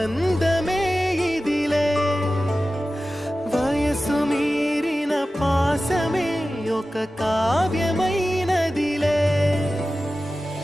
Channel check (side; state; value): both; normal; correlation 0.95